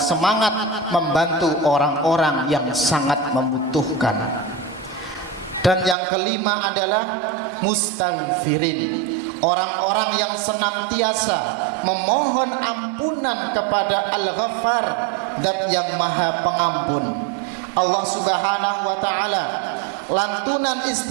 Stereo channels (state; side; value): drops out; left; at 6.0 s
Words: membantu orang-orang yang sangat membutuhkan. Dan yang kelima adalah mustaghfirin, orang-orang yang senantiasa memohon ampunan kepada Al-Ghaffar, Zat yang Maha Pengampun. Allah Subhanahu wa taala lantunan